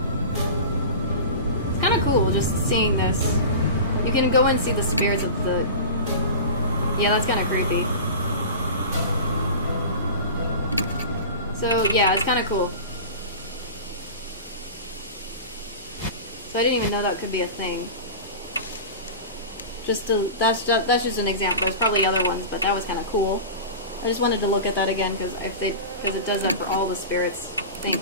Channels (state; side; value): inverted; both; correlation -0.31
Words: It's kind of cool, just seeing this. You can go and see the spirits of the... Yeah, that's kind of creepy. So, yeah, it's kind of cool. So I didn't even know that could be a thing. That's just an example. There's probably other ones, but that was kind of cool. I just wanted to look at that again because it does that for all the spirits thing,